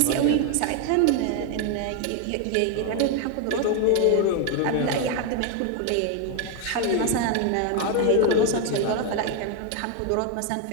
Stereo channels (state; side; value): different; both; correlation 0.01